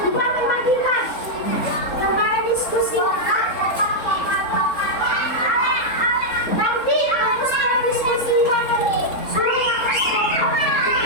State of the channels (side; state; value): right; late; 4.0 ms